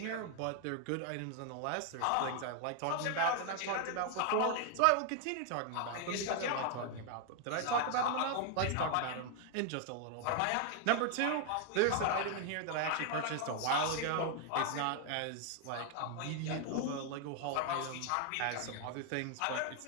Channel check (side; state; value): both; different; correlation 0.00